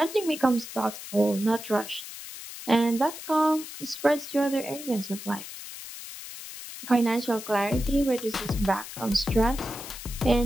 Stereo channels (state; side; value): noise; left; hiss, 12 dB below the sound